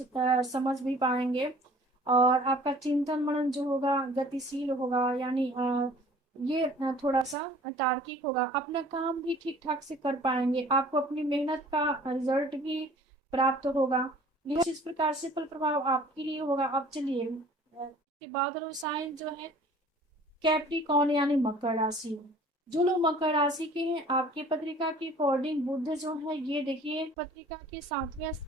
समझ भी पाएंगे। और आपका चिंतन मनन जो होगा गतिशील होगा, यानी ये थोड़ा सा तार्किक होगा। अपना काम भी ठीक ठाक से कर पाएंगे। आपको अपनी मेहनत का रिजल्ट भी प्राप्त होगा। यह इस प्रकार से फल प्रभाव आपके लिए होगा। अब चलिए के बाद साइन जो है कैप्रिकॉर्न यानी मकर राशि। जो लोग मकर राशि के हैं, आपके पत्रिका के अकॉर्डिंग बुध जो है, ये देखिए पत्रिका के 7वें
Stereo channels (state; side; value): normal; both; correlation 0.50